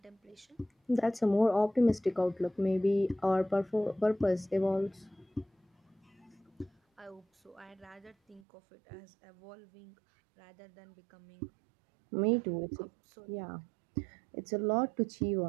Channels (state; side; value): drops out; left; at 8.4 s